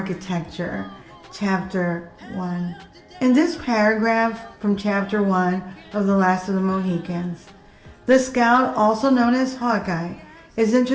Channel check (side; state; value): both; identical; correlation 1.00